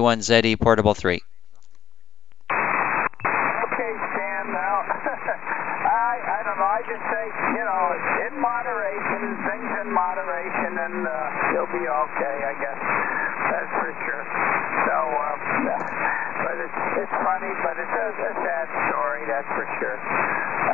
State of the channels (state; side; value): quieter; right; 9.9 dB